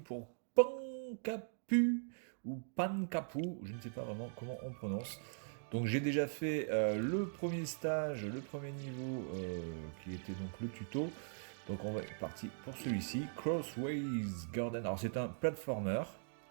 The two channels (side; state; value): left; silent; digital silence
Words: Pankapu ou Pankapu, je ne sais pas vraiment comment on prononce. Donc j'ai déjà fait le premier stage, le premier niveau qui était donc le tuto. Donc on va être parti pour celui-ci, Crossways Garden. Alors c'est un platformer